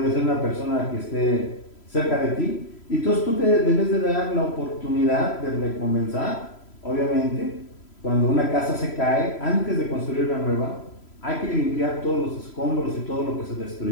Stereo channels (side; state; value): right; late; 3.0 ms